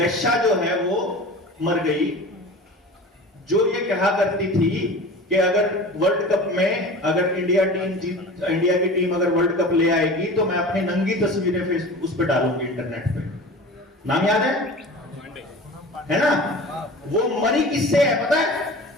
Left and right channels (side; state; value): both; normal; correlation 0.37